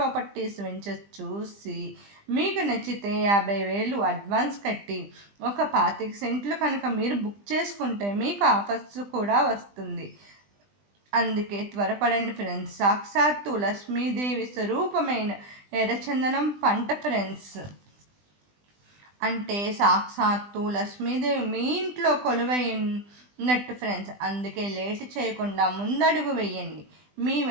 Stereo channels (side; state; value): left; late; 20 ms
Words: వెంచర్ చూసి మీకు నచ్చితే 50,000 అడ్వాన్స్ కట్టి ఒక 25 సెంట్లు కనుక మీరు బుక్ చేసుకుంటే మీకు ఆఫర్స్ కూడా వస్తుంది. అందుకే త్వరపడండి ఫ్రెండ్స్. సాక్షాత్తు లక్ష్మీదేవి స్వరూపమైన ఎర్రచందనం పంట ఫ్రెండ్స్. అంటే సాక్షాత్తు లక్ష్మీదేవి మీ ఇంట్లో కొలువైనట్టు ఫ్రెండ్స్. అందుకే లేట్ చేయకుండా ముందడుగు వేయండి. మీ